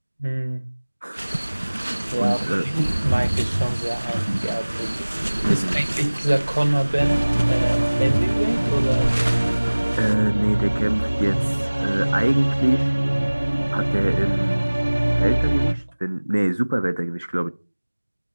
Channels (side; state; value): both; inverted; correlation -1.00